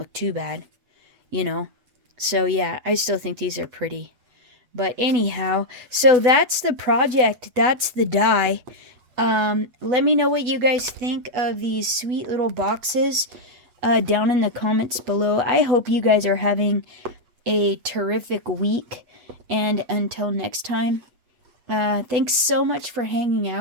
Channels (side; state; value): left; late; 8.1 ms